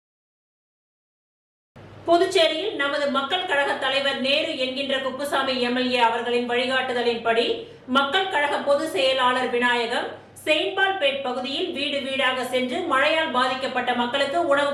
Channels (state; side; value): identical; both; correlation 1.00